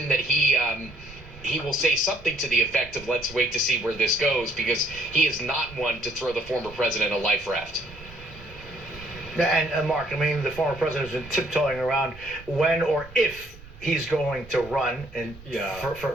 that he will say something to the effect of, let's wait to see where this goes, because he is not one to throw the former president a life raft. And Mark, the former president has been tiptoeing around when or if he's going to run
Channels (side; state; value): right; noise; rumble, 19 dB below the sound